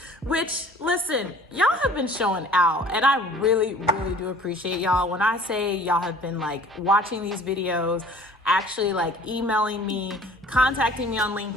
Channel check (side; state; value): both; normal; correlation 0.50